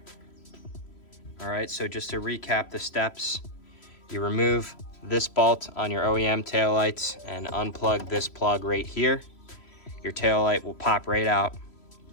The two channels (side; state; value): right; late; 3.1 ms